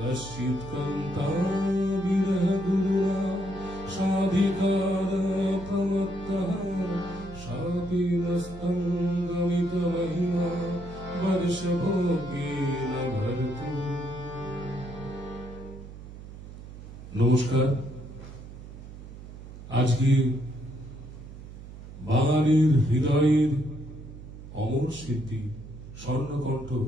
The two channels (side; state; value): right; noise; hum, 14 dB below the sound